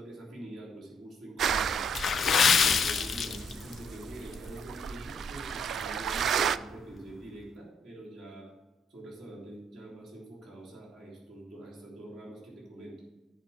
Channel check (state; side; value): normal; both; correlation 0.70